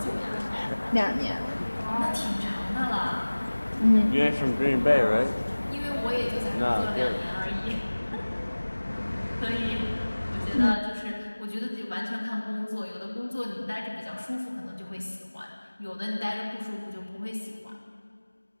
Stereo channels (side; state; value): both; inverted; correlation -1.00